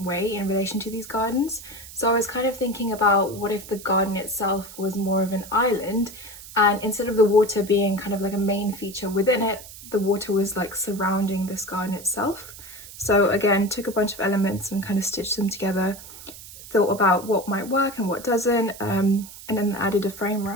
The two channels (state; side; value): noise; right; hiss, 16 dB below the sound